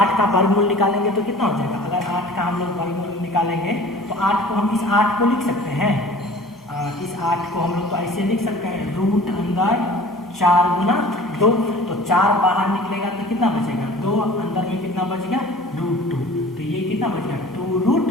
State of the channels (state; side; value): normal; both; correlation 0.45